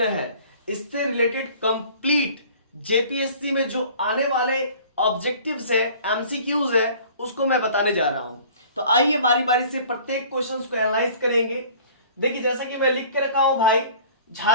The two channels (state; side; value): inverted; both; correlation -0.48